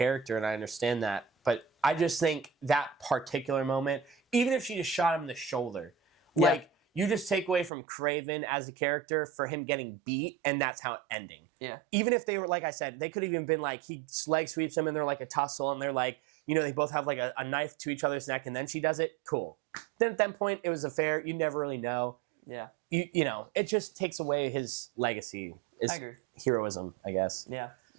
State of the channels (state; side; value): drops out; left; at 7.7 s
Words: and I understand that. But I just think that particular moment, even if she just shot him in the shoulder, like you just take away from Kraven as a character for him getting beat, and that's how it ending. Yeah. Even if they were, like I said, they could have even been like he leg sweeps him, and they're like a tussle, and they're like, you know, they both have like a knife to each other's neck, and then she does it. Cool. Then at that point, it was a fair. You never really know. Yeah. You know, it just takes away his legacy. I agree. Heroism, I guess. Yeah.